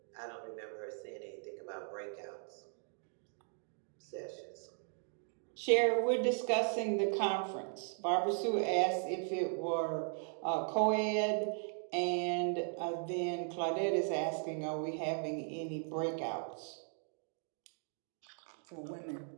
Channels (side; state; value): left; silent; 53 dB below the other